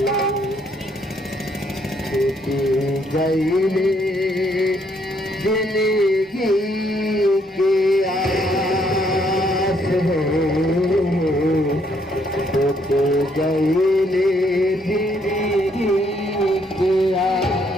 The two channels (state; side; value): normal; both; correlation 0.70